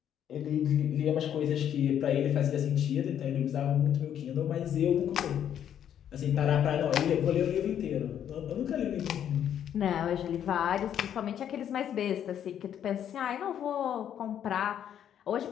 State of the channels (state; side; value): quieter; right; 9.7 dB